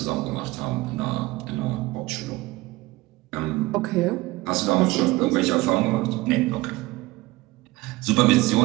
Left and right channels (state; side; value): quieter; left; 20.2 dB